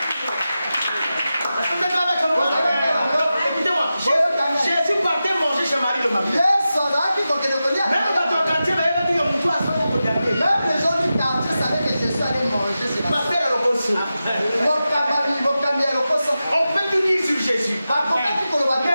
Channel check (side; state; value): both; inverted; correlation -0.92